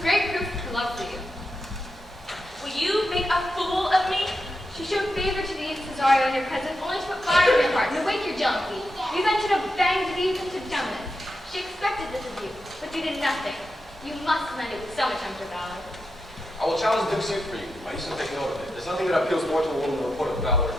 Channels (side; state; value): both; normal; correlation 0.87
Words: proof of her love for you. Will you make a fool of me? She showed favor to thee, Cesario, in your presence, only to put fire in your heart and awake your jealousy. You then should have banged thee into dumbness. She expected this of you, but you did nothing. You must commend it with so much hunter valor. I will challenge the Duke's suit for you. I used to take note of it. There's nothing that appeals more to a woman than a report of valor in